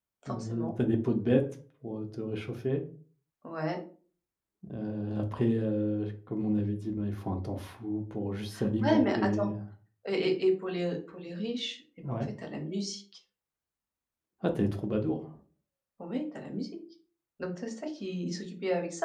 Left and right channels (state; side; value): identical; both; correlation 1.00